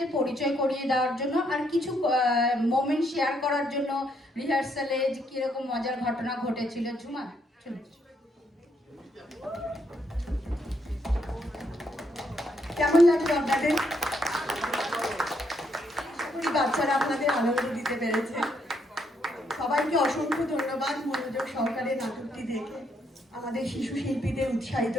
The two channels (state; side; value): normal; both; correlation 0.74